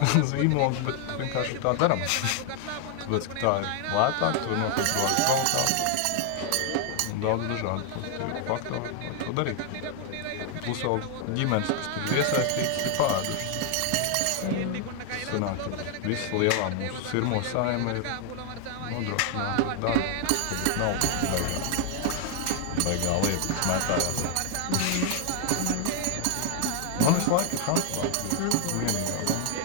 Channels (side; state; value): both; different; correlation 0.00